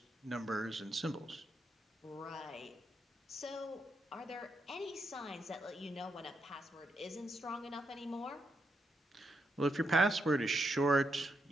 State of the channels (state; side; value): normal; both; correlation 0.81